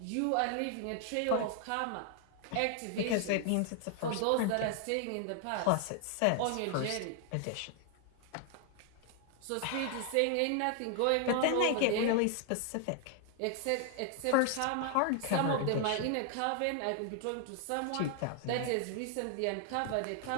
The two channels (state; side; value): different; both; correlation 0.00